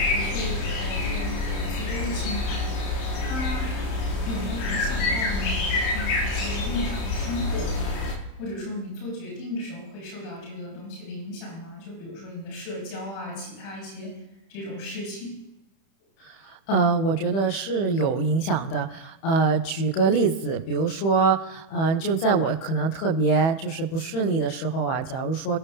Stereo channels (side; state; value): right; late; 31 ms